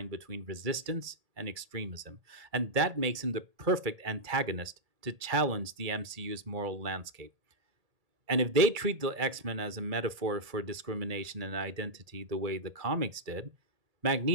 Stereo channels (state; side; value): late; left; 1.8 ms